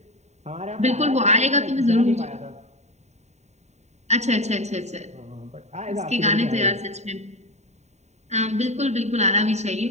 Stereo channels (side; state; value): left; late; 0.32 ms